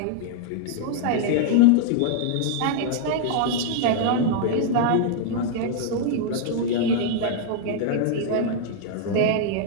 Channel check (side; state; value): both; different; correlation -0.01